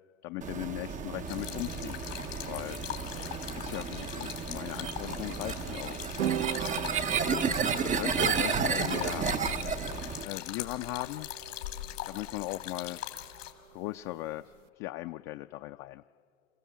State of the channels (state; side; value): normal; both; correlation 0.11